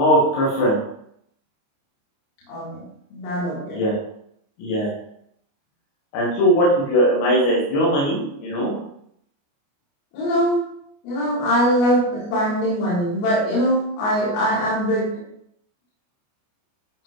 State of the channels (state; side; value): late; right; 29 ms